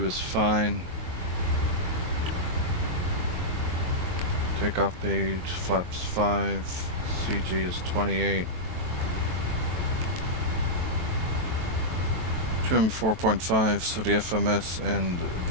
is fine. Takeoff page, flaps 5, CG is 28. Trim 4.5, so the FMS and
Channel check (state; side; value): late; left; 23 ms